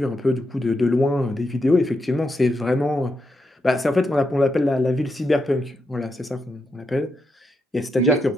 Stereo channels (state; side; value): normal; both; correlation 0.83